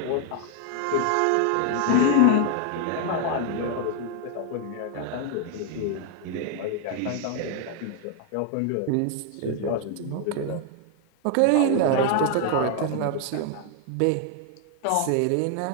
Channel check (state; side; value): different; both; correlation 0.00